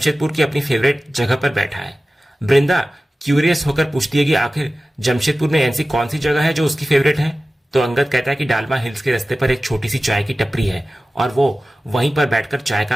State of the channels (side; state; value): both; normal; correlation 0.96